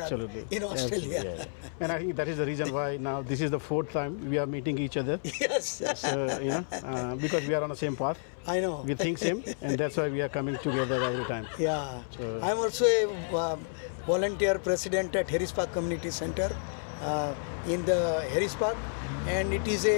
in Australia. Absolutely, yeah. And I think that is the reason why now this is the 4th time we are meeting each other. Yes. So, because we are on the same path. I know. We think same, and that's why we are coming together every time. Yeah. So, I'm also a volunteer president at Harris Park Community Center in the Harris Park, and it is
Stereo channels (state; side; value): silent; right; 58 dB below the other